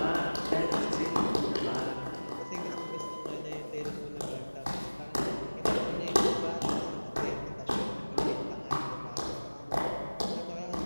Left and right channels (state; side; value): inverted; both; correlation -1.00